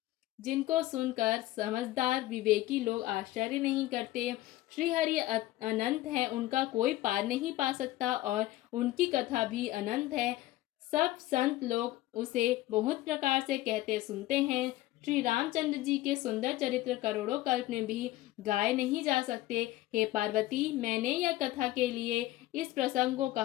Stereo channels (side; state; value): right; quieter; 16.3 dB